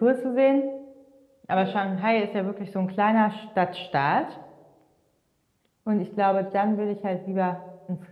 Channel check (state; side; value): identical; both; correlation 1.00